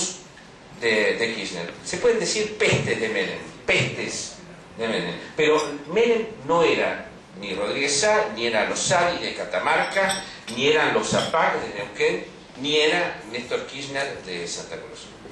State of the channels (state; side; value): identical; both; correlation 1.00